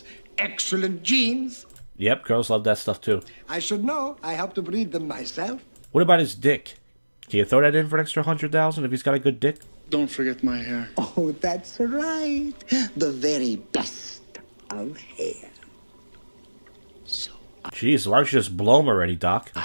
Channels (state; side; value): inverted; both; correlation -1.00